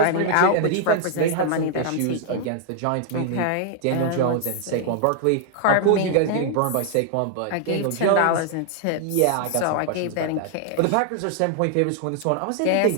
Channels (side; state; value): both; different; correlation -0.01